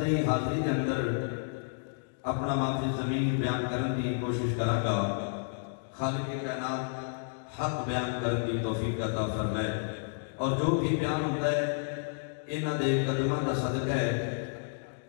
حاضری کے اندر اپنا معافی زمین بیان کرنے کی کوشش کروں گا۔ خالق کائنات حق بیان کرنے کی توفیق عطا فرمائے، اور جو بھی بیان ہوتا ہے انہاں دے قدماں دا صدقہ ہے۔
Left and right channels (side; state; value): right; silent; digital silence